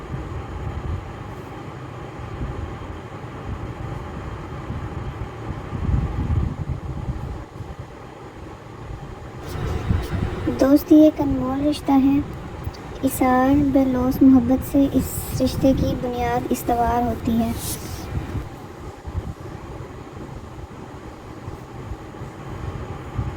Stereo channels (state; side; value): identical; both; correlation 1.00